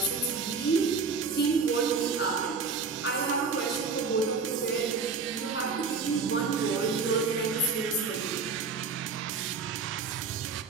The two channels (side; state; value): left; quieter; 4.9 dB